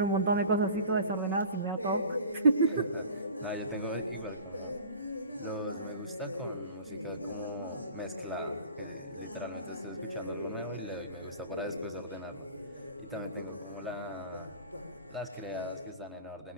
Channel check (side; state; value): both; inverted; correlation -0.42